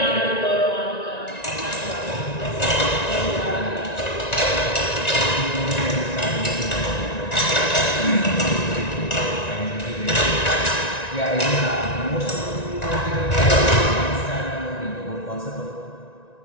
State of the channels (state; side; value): late; right; 1.9 ms